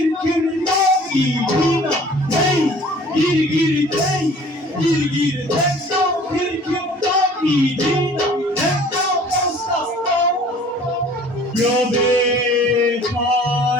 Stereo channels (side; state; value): both; normal; correlation 0.50